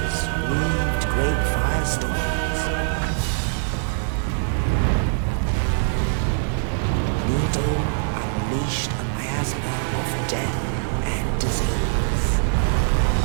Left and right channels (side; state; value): left; silent; digital silence